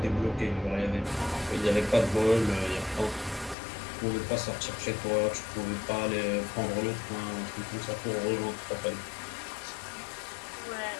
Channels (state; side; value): drops out; right; at 3.6 s